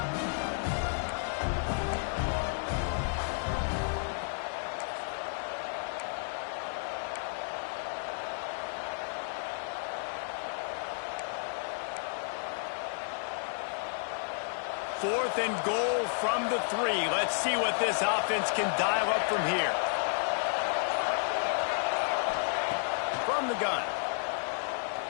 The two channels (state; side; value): silent; right; digital silence